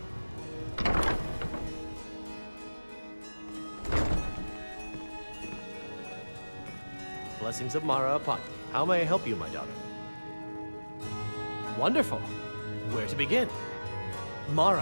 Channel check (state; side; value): inverted; both; correlation -1.00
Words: blessings of Mara upon you. How may I help you, my daughter? Wonderful. Where to begin?